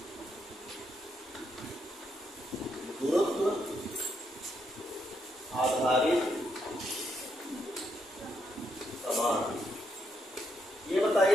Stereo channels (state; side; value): normal; both; correlation 0.77